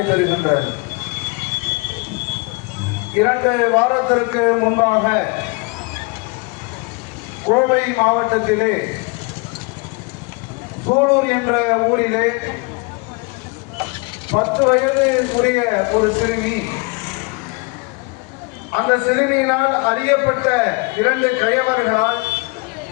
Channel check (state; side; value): quieter; right; 29.4 dB